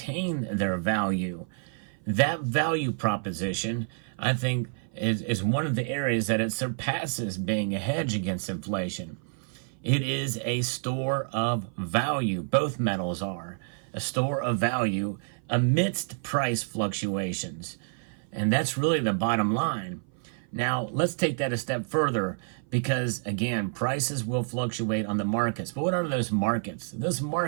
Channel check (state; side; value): silent; left; 56 dB below the other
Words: their value. That value proposition, I think, is one of the areas that it surpasses being a hedge against inflation. It is a store of value. Both metals are a store of value amidst price fluctuations. And that's really the bottom line. Now, let's take that a step further because, again, prices will fluctuate on the markets. But what are those markets? Those